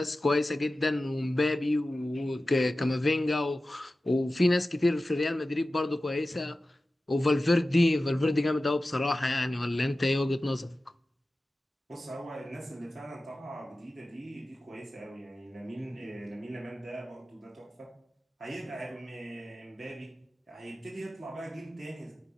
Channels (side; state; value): both; normal; correlation 0.95